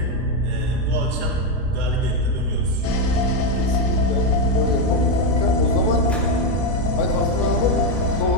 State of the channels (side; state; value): both; normal; correlation 0.06